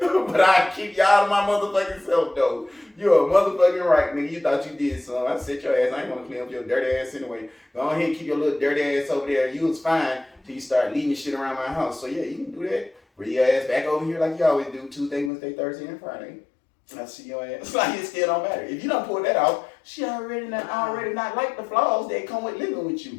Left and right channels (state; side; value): drops out; right; at 15.3 s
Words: But I keep y'all to my motherfucking self though. You're a motherfucking right, nigga. You thought you did something. I set your ass. I ain't gonna clean up your dirty ass anyway. Go ahead and keep your little dirty ass over there. You was fine till you start leaving shit around my house. So yeah, you can do that. Bring your ass back over here like you always do. Tuesday, Wednesday, Thursday, and Friday. I see your ass. It's like it still don't matter. If you don't pull that off, she already not like the flaws that come with living with